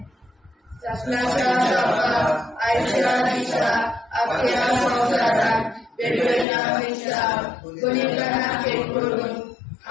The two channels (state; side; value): drops out; right; at 6.5 s